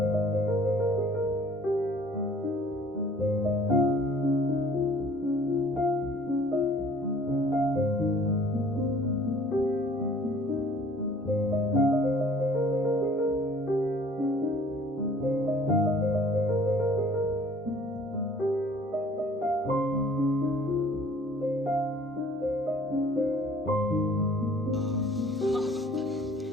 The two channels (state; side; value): normal; both; correlation 0.53